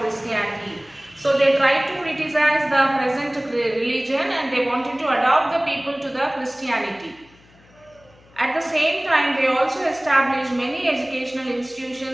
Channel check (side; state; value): left; noise; hum, 28 dB below the sound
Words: Christianity. So they tried to criticize the present religion and they wanted to adopt the people to the Christianity. At the same time, they also established many educational